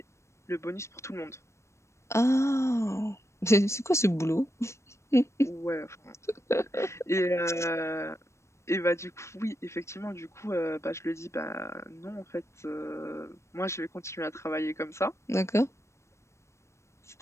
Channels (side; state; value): right; late; 0.13 ms